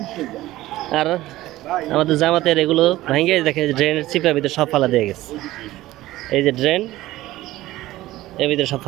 আর আমাদের জামাতের এগুলো ভেঙে দেখে ড্রেনের চিপের ভিতরে সব ফালা দিয়ে গেছে। এই যে ড্রেন, এর ভিতরে সব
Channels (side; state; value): left; quieter; 16.4 dB